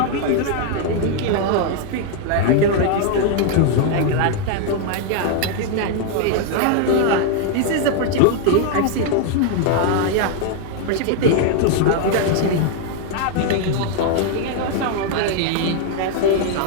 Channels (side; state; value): both; different; correlation 0.00